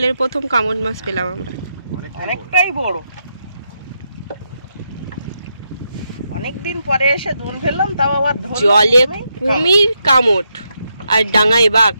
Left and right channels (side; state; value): both; inverted; correlation -0.82